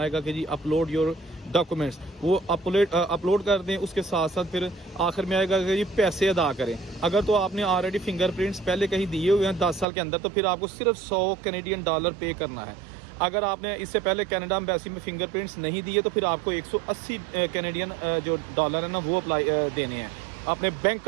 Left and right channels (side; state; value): left; drops out; at 9.9 s